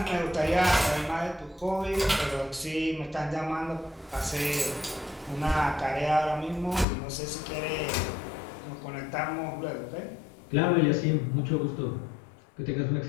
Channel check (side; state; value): right; drops out; at 6.9 s